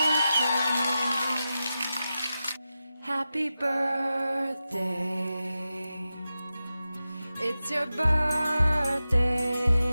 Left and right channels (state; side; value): inverted; both; correlation -0.92